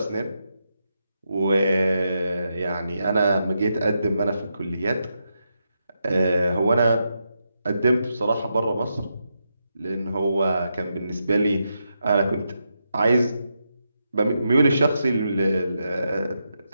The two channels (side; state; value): both; inverted; correlation -0.84